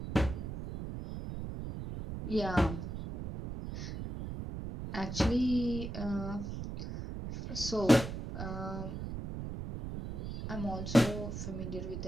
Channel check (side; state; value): right; noise; rumble, 6 dB below the sound